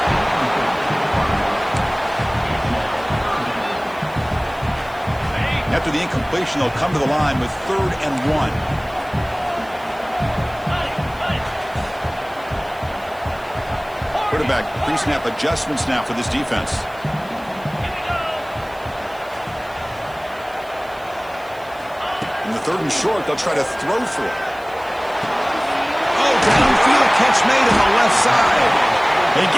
After the incompletion, they'll come to the line with 3rd and 1. Quarterback pre-snap adjustments now for this defense. In the 3rd and short, they'll try to throw for it. Oh, downfield catch made on the left side. They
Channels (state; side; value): noise; right; hiss, 25 dB below the sound